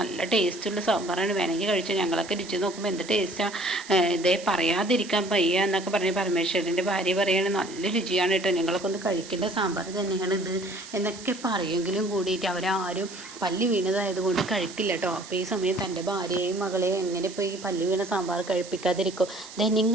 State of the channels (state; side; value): noise; right; hiss, 15 dB below the sound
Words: നല്ല ടേസ്റ്റുള്ള സാമ്പാറാണ്, വേണമെങ്കിൽ കഴിച്ചു, ഞങ്ങളൊക്കെ രുചി നോക്കുമ്പോൾ എന്ത് ടേസ്റ്റാണ്, ഇതേ പറയാതിരിക്കാൻ വയ്യ എന്നൊക്കെ പറഞ്ഞ് പരമേശ്വരൻ്റെ ഭാര്യ പറയാണ് നല്ല രുചിയാണ് കേട്ടോ, ഞങ്ങളൊക്കെ ഒന്ന് കഴിക്കേണ്ട സാമ്പാർ തന്നെയാണ് ഇത് എന്നൊക്കെ പറയെങ്കിലും കൂടിയിട്ട് അവരാരും പല്ലി വീണതായതുകൊണ്ട് കഴിക്കില്ല കേട്ടോ. അപ്പോൾ ഈ സമയം തൻ്റെ ഭാര്യയെയും മകളെയും എങ്ങനെ ഇപ്പോൾ ഈ പല്ലി വീണ സാമ്പാർ കഴിപ്പിക്കാതിരിക്കും.